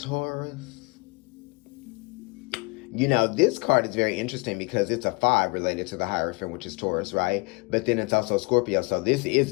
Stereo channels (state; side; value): quieter; right; 28.3 dB